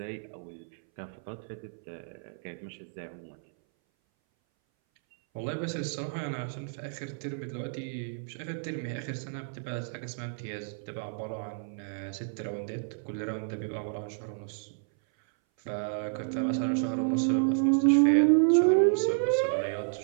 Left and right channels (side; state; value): left; silent; 57 dB below the other